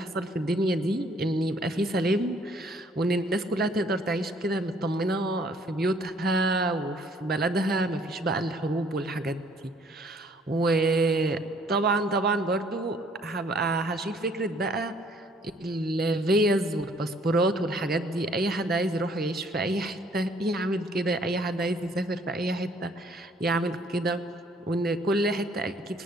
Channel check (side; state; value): both; normal; correlation 0.61